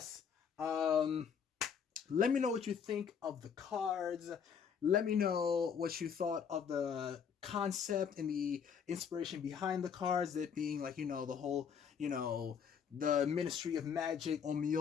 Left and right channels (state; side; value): quieter; right; 7.1 dB